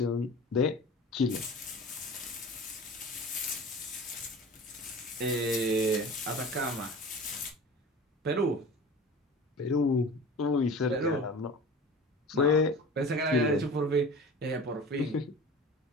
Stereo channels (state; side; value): normal; both; correlation 0.37